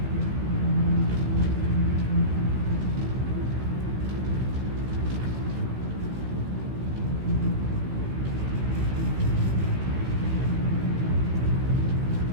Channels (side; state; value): left; late; 16 ms